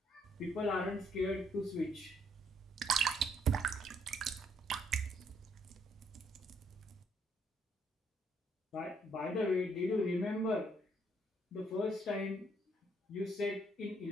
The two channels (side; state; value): both; normal; correlation 0.69